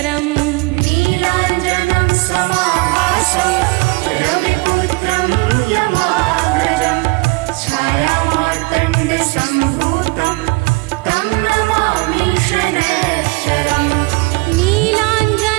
नीलाञ्जनं समाभासं रविपुत्रं यमाग्रजं छायामार्तण्डसम्भूतं तं नमामि शनैश्चरम्।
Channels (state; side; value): quieter; left; 25.7 dB